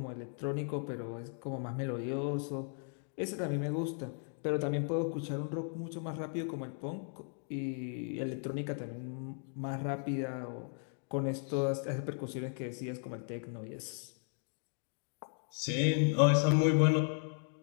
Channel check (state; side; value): silent; right; 54 dB below the other